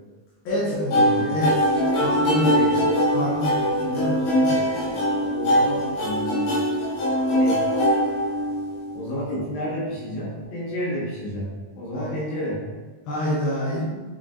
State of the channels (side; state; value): right; late; 20 ms